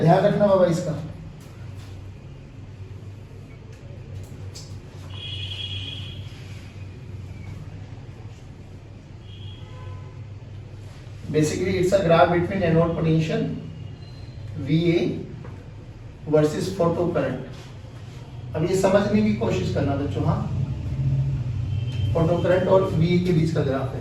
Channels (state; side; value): identical; both; correlation 1.00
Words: रखना बाबा इसका। Basically, it's a graph between anode potential VA versus photo current. अब ये समझने की कोशिश करना बच्चों, हाँ, फोटो करंट और VA के बीच का ग्राफ